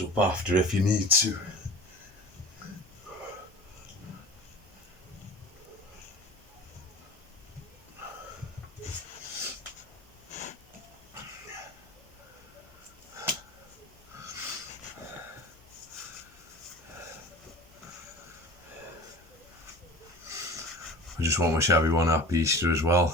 up after if you need to. I just want to wish everyone happy Easter as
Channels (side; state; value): both; normal; correlation 0.38